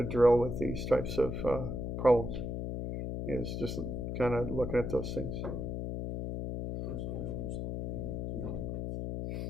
drill with these types of problems, is just kind of looking at those things.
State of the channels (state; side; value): noise; left; hum, 3 dB below the sound